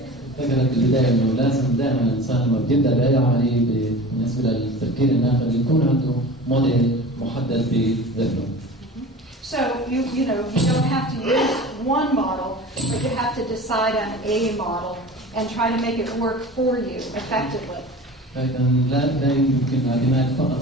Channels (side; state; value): both; normal; correlation 0.37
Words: ذكرت البداية انه لازم دائما الانسان لما بيبدا باي عملية بالنسبة للتفكير الناقد يكون عنده موديل محدد بذهنه. So you don't have to use one model, but you have to decide on a model and try to make it work for you effectively. لكن لا يمكن الاعتماد فقط